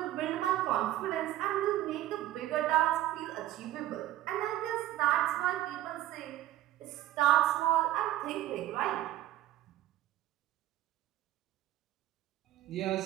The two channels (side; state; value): left; quieter; 14.1 dB